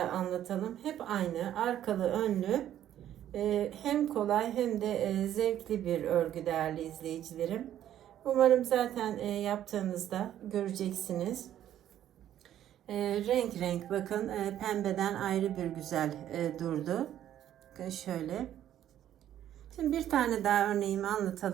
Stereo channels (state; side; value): quieter; left; 11.4 dB